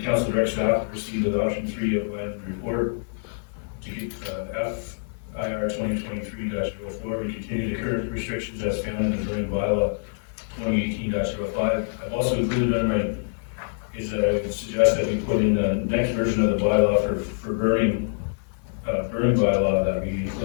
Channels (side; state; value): right; silent; digital silence